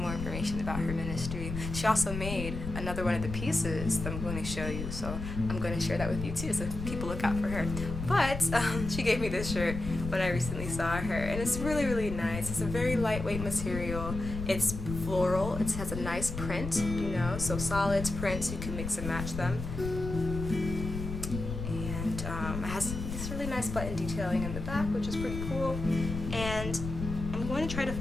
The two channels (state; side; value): noise; left; rumble, 6 dB below the sound